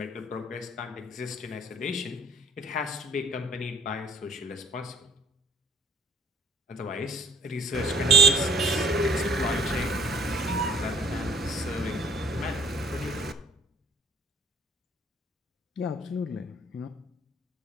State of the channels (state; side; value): normal; both; correlation 0.55